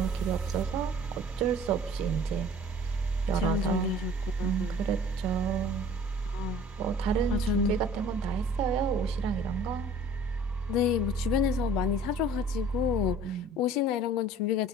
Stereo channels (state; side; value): normal; both; correlation 0.49